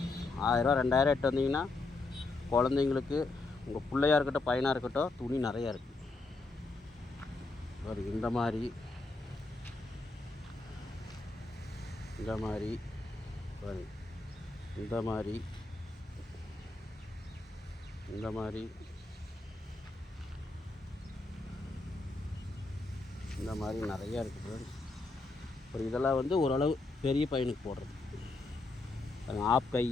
1000 ரூபா 2000 எட்டு வந்தீங்கன்னா குழந்தைங்களுக்கு, உங்கள் பிள்ளையாக இருக்கட்டும் பையனாக இருக்கட்டும், துணி நிறையா இருக்குது. இந்த மாதிரி பாருங்க, இந்த மாதிரி நிறையா இருக்குது ஃப்ரெண்ட்ஸ். அப்புறம் இதெல்லாம் வந்து ஓரளவு பெரிய பையனுக்கு போடுறது. ஆப்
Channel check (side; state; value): right; quieter; 3.4 dB